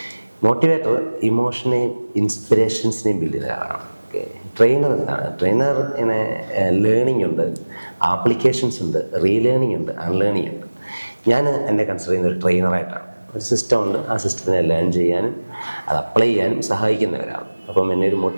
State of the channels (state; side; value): inverted; both; correlation -1.00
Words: മോട്ടിവേറ്റർ ഇമോഷനെയും ഇൻസ്പിറേഷൻസിനെയും ബിൽഡ് ചെയ്യുന്ന ഒരാളാണ്. ട്രെയിനർ എന്താണ്? ട്രെയിനർ ഇങ്ങനെ ലേണിംഗ് ഉണ്ട്, ആപ്ലിക്കേഷൻസ് ഉണ്ട്, റീലേണിംഗ് ഉണ്ട്, അൺലേണിംഗ് ഉണ്ട്. ഞാൻ എന്നെ കൺസിഡർ ചെയ്യുന്ന ഒരു ട്രെയിനറായിട്ടാണ്. ഒരു സിസ്റ്റം ഉണ്ട്, ആ സിസ്റ്റത്തിനെ ലേൺ ചെയ്യാനും അത് അപ്ലൈ ചെയ്യാനും സഹായിക്കുന്ന ഒരാൾ. അപ്പം എന്നെ ഒരു